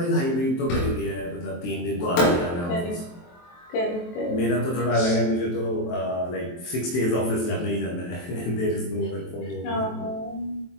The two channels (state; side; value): late; right; 23 ms